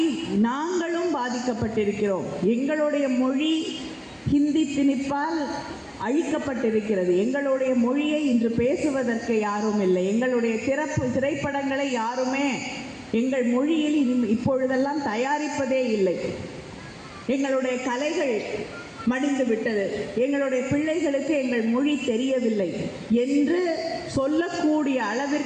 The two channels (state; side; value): identical; both; correlation 1.00